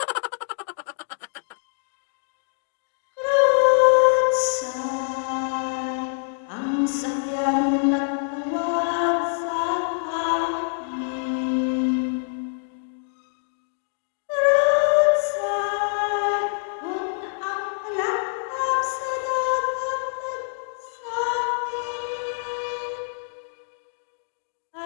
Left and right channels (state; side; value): silent; right; digital silence